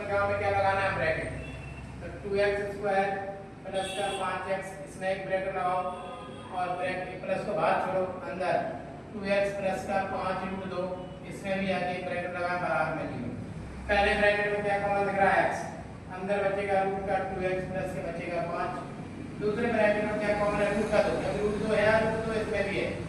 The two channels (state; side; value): identical; both; correlation 1.00